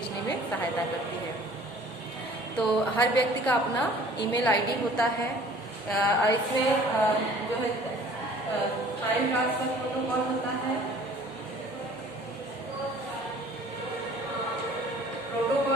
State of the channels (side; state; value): both; normal; correlation 0.51